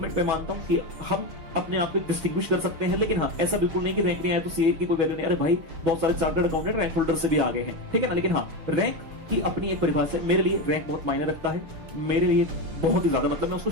पे मानता हूँ कि हम अपने आप को डिस्टिंग्विश कर सकते हैं, लेकिन हाँ ऐसा बिल्कुल नहीं कि रैंक नहीं आया तो सीए की कोई वैल्यू नहीं। अरे भाई बहुत सारे चार्टर्ड अकाउंटेंट रैंक होल्डर से भी आगे हैं, ठीक है ना। लेकिन हाँ, रैंक की अपनी एक परिभाषा है, मेरे लिए रैंक बहुत मायने रखता है, मेरे लिए बहुत ही ज्यादा, मतलब मैं उसको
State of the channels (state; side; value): late; left; 6.2 ms